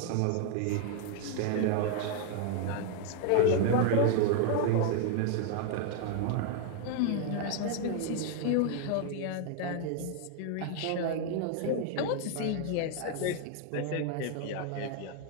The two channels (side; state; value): both; different; correlation 0.00